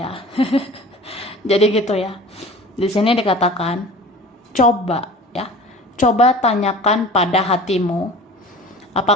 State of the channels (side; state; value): both; normal; correlation 0.41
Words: Jadi gitu ya. Di sini dikatakan coba ya. Coba tanyakan pada hatimu,